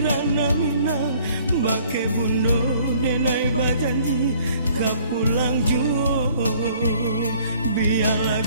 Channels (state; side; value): inverted; both; correlation -0.58